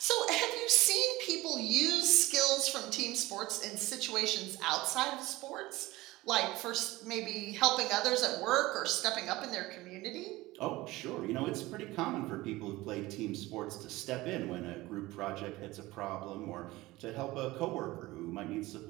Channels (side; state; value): left; quieter; 19.1 dB